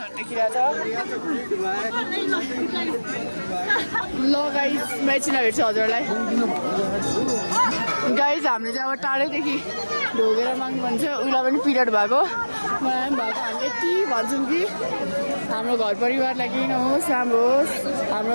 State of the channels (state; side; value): inverted; both; correlation -1.00